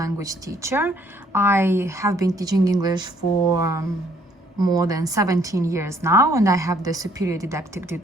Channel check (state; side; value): normal; both; correlation 0.64